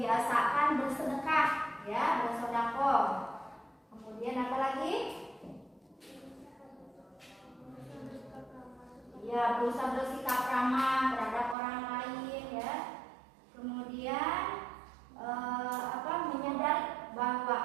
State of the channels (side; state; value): left; drops out; at 11.6 s